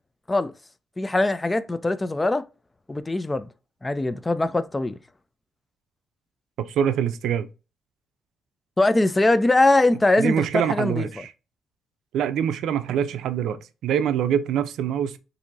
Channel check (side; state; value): both; normal; correlation 0.82